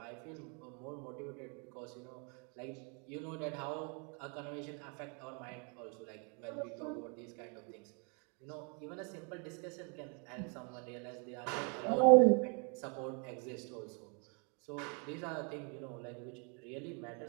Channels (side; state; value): left; quieter; 36.3 dB